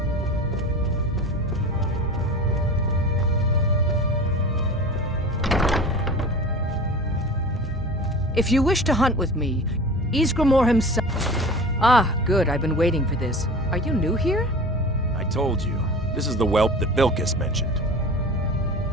If you wish to hunt with me, Ysgramor himself... Ah, good. I've been waiting for this. Are you new here? I told you. This is the whelp that Vilkas mentioned.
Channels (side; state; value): both; normal; correlation 0.36